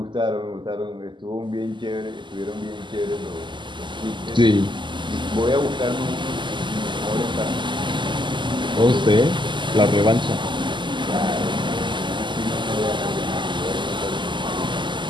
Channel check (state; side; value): late; left; 0.23 ms